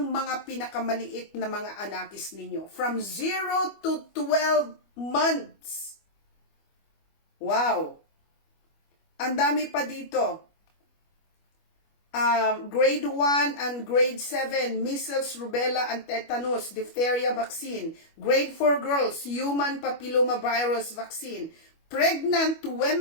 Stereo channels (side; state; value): right; late; 25 ms